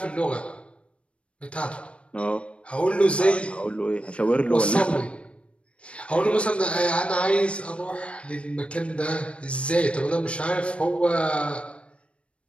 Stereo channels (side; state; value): right; late; 0.060 ms